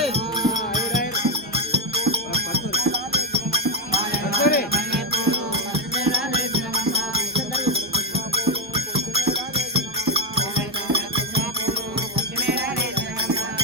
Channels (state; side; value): normal; both; correlation 0.08